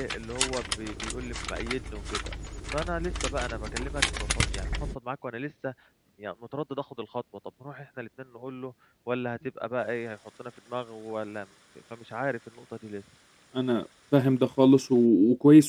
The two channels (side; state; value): both; identical; correlation 1.00